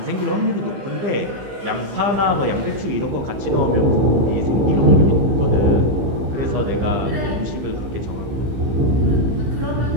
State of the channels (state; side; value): late; left; 15 ms